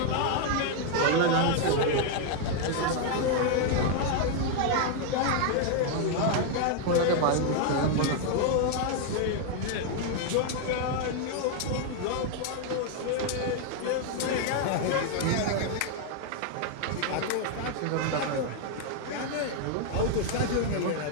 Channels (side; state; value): both; different; correlation 0.00